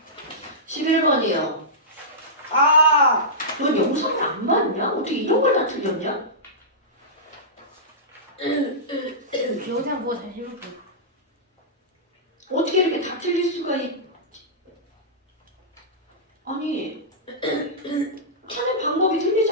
11번이요. 아 넌 영상을 안 봤냐? 어떻게 이런 걸 다 틀렸냐? 영상 보고 다시 해볼게. 어떻게 이렇게 다 틀릴 수가 아니, 하는 방법이 틀리지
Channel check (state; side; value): normal; both; correlation -0.16